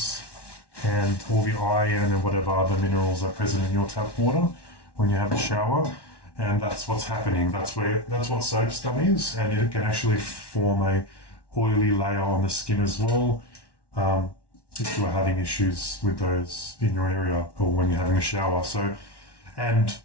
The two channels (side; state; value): right; late; 1.1 ms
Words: and all the iron and whatever other minerals are present in your tap water when you have a shower. And that's what's happening. That's what soap scum is, and it can actually form a oily layer on the skin as well. If you are having issues with those in your area or when you're having a shower. So, and